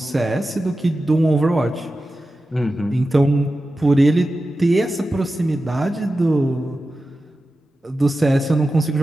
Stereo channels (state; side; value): normal; both; correlation 0.93